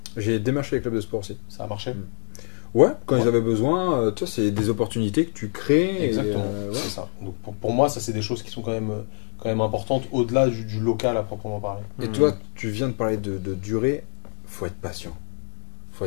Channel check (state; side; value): silent; right; digital silence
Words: J'ai démarché les clubs de sport aussi. Ça a marché. Ouais, quand Ouais. ils avaient besoin, tu vois, c'est des opportunités que tu crées. Exactement, ouais. c'est ça. Donc pour moi, ça c'est des choses qui sont quand même importantes au-delà du local à proprement parler. Et toi, tu viens de parler de durée, faut être patient. Faut